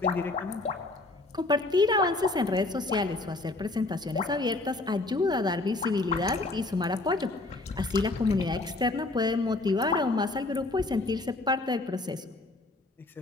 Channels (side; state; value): right; quieter; 3.0 dB